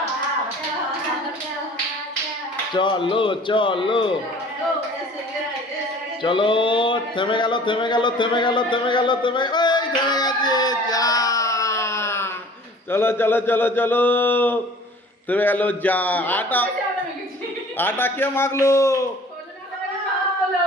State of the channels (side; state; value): both; normal; correlation 0.48